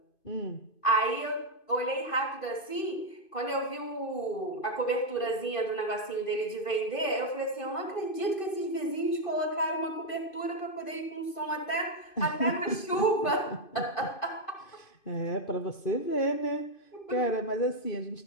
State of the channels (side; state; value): right; late; 2.5 ms